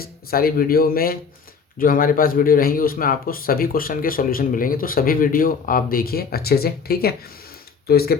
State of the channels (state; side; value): quieter; right; 5.6 dB